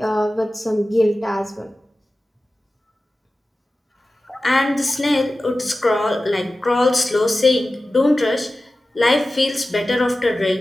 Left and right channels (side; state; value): both; normal; correlation 0.95